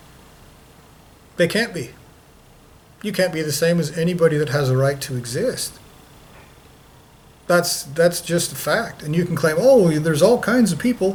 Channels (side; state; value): both; identical; correlation 1.00